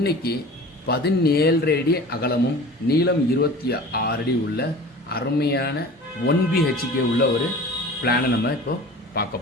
17 அடி அகலமும் நீளம் 26 அடி உள்ள அருமையான 1BHK உள்ள ஒரு பிளானை நம்ம இப்போ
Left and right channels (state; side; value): normal; both; correlation 0.39